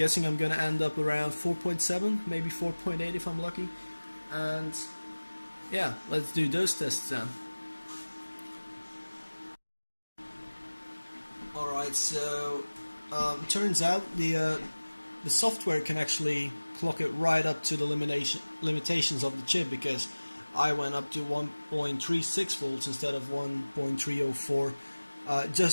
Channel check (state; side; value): inverted; both; correlation -1.00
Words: I'm going to end up around 4.7, maybe 4.8 if I'm lucky. And yeah, let's do those tests then. Alright, so turns out the software can actually clock it right up to the limitations of the chip, because I went up to 1.36 volts instead of 1.304.